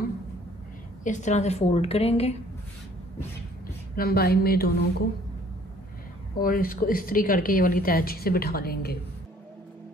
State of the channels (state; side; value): normal; both; correlation 0.57